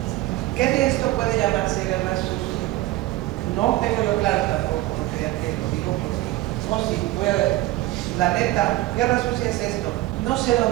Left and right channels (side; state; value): left; quieter; 17.4 dB